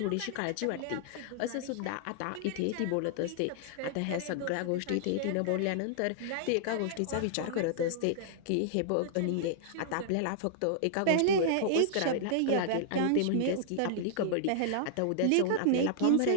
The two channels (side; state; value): both; different; correlation -0.01